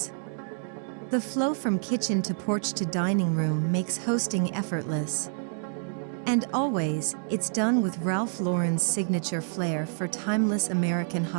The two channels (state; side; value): silent; left; digital silence